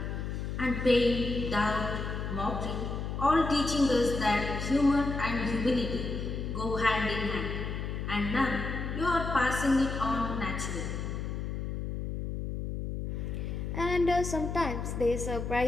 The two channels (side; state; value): left; noise; hum, 4 dB below the sound